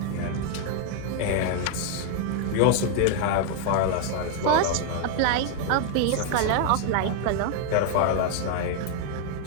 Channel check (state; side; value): different; both; correlation 0.00